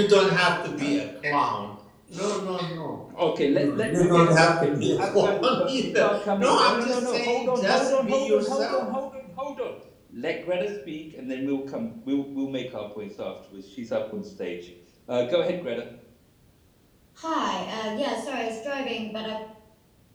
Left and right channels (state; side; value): identical; both; correlation 1.00